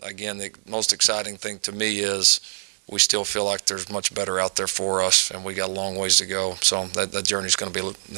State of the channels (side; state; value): left; silent; digital silence